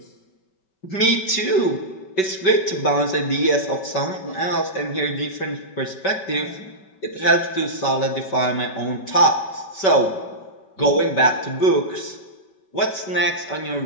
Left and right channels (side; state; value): right; late; 5.2 ms